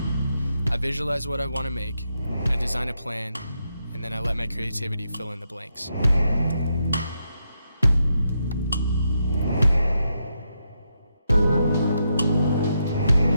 I visualize what I want to make, I design a plan, and then I let my creativity fill in the blanks.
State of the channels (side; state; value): both; inverted; correlation -0.82